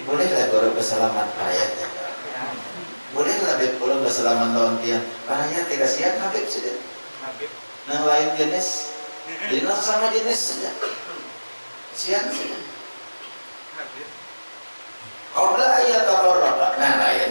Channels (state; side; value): inverted; both; correlation -1.00